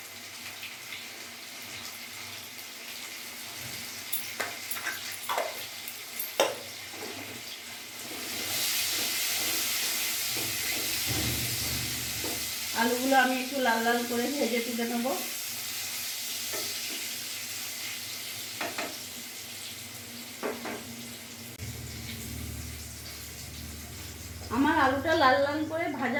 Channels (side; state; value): both; identical; correlation 1.00